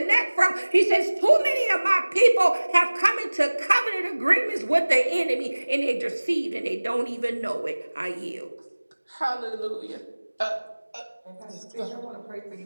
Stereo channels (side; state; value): both; inverted; correlation -1.00